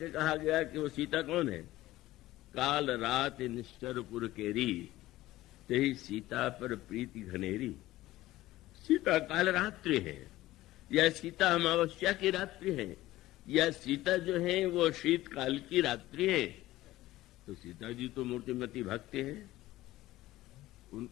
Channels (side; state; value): right; quieter; 16.5 dB